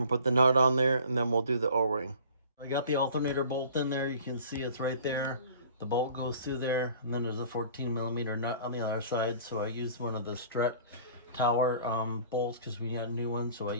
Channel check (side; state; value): both; inverted; correlation -0.48